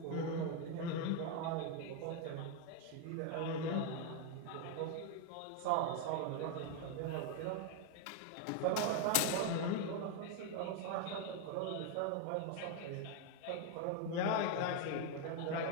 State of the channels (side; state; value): both; different; correlation 0.01